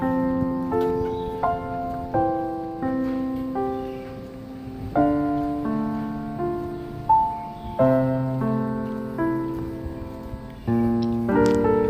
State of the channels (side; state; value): both; identical; correlation 1.00